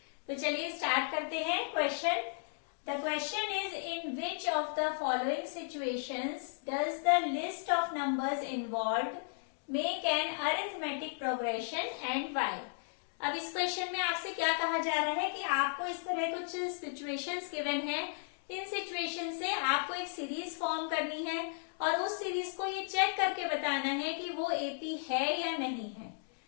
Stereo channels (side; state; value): right; silent; digital silence